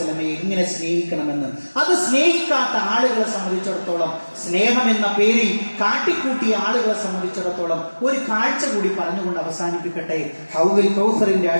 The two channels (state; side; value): inverted; both; correlation -1.00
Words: എങ്ങനെ സ്നേഹിക്കണമെന്ന്. അത് സ്നേഹിക്കാത്ത ആളുകളെ സംബന്ധിച്ചിടത്തോളം, സ്നേഹം എന്ന പേരിൽ കാട്ടിക്കൂട്ടിയ ആളുകളെ സംബന്ധിച്ചിടത്തോളം ഒരു കാഴ്ച കൂടി പറഞ്ഞുകൊണ്ട് അവസാനിപ്പിക്കട്ടെ. ഹൗദുൽ കൗസറിന്റെ